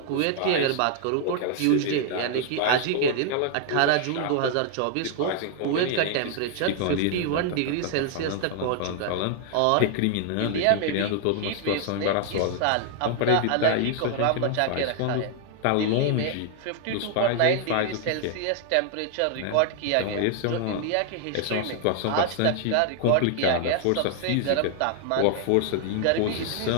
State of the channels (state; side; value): different; both; correlation 0.00